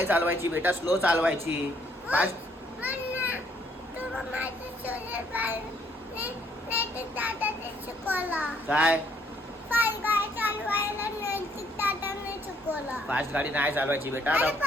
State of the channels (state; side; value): normal; both; correlation 0.67